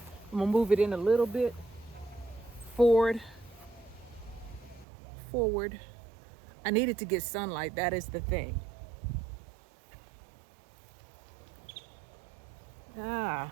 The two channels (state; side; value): drops out; left; at 4.9 s